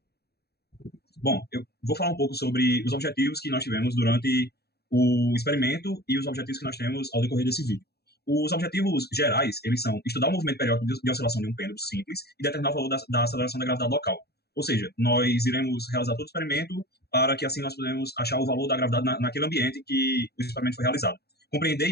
Bom, eu vou falar um pouco sobre os objetivos que nós tivemos durante o experimento e os objetivos que nós temos ao decorrer desse vídeo. Os objetivos gerais, eles são estudar o movimento periódico de oscilação de um pêndulo simples e determinar o valor da aceleração da gravidade local. Ou seja, nós iremos realizar todo o experimento para que assim nós podemos achar o valor da gravidade naquele ambiente que o experimento foi realizado. Compreender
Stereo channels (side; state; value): right; late; 0.47 ms